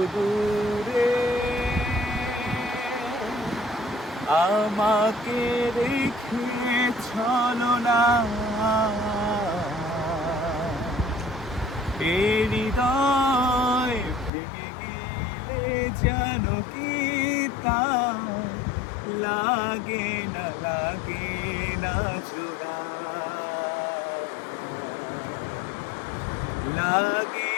দূরে, আমাকে রেখে চলো না। এই হৃদয় ভেঙে গেলে জানো কি তা লাগে না জোড়া, লাগে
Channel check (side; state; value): right; drops out; at 14.3 s